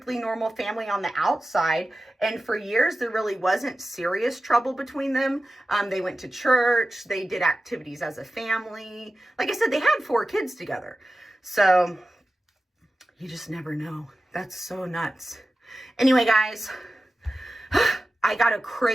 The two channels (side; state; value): both; normal; correlation 0.94